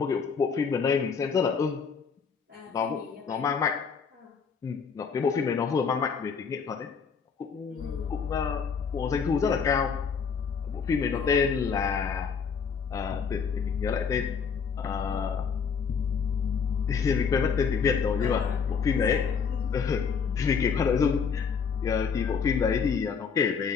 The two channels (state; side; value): quieter; right; 6.0 dB